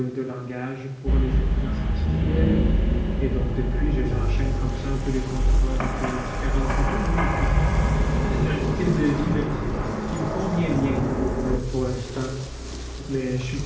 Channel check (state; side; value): identical; both; correlation 1.00